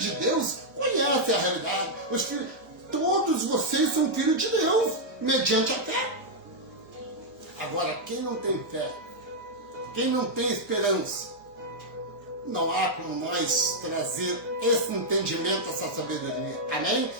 de Deus conhecem a realidade. Todos vocês são filhos de Deus, mediante a fé. Agora, quem não tem fé, quem não tem esperança, não há como nós trazer esse entendimento, essa sabedoria. Amém?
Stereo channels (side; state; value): both; normal; correlation -0.04